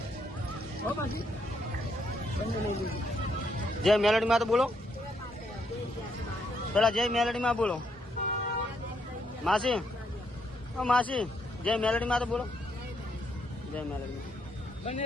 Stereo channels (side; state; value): both; normal; correlation 0.75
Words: હો પછી બંને લઈ લીધું. જય મેલડીમાં તો બોલો પેલા. જય મેલડીમાં બોલો માસી. ઓ માસી જય મેલડીમાં તો બોલો. જય મેલડીમાં. બંને